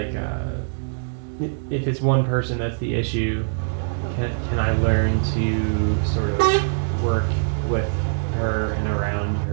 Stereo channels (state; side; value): silent; left; digital silence